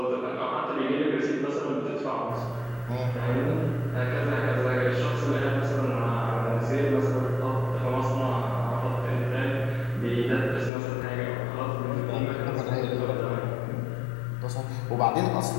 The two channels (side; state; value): right; drops out; at 10.7 s